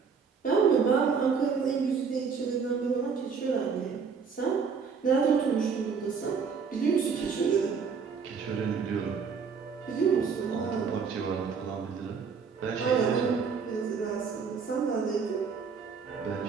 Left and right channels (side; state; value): left; quieter; 5.8 dB